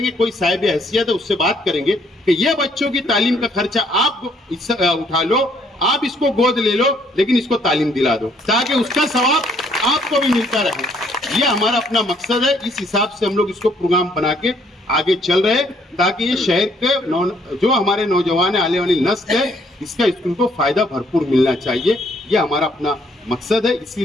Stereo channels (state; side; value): normal; both; correlation 0.66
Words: कोई साहिब हैसियत है उससे बात करेंगे कि ये बच्चों की तालीम का खर्चा आप उठा लो, आप इसको गोद ले लो, लेकिन इसको तालीम दिला दो, ताकि उसका सवाब आपको भी मिलता रहे। ये हमारा अपना मकसद है। इस हिसाब से हम लोग इसको प्रोग्राम बना के आगे चल रहे, ताकि ये शहर के जो हमारे नौजवान आने वाली नस्ल है, इसका स्कूल को फायदा भरपूर मिलना चाहिए। ये हमारा अपना मकसद है,